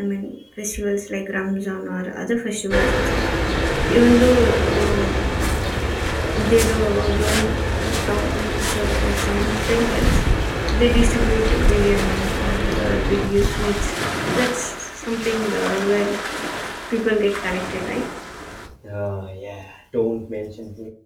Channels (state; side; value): identical; both; correlation 1.00